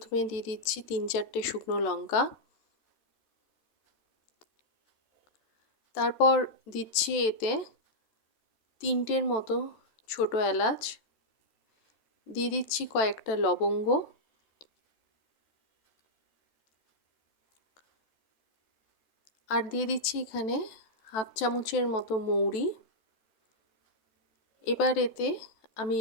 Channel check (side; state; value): right; late; 14 ms